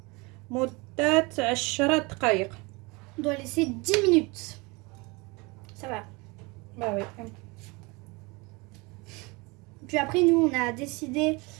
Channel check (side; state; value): left; quieter; 26.5 dB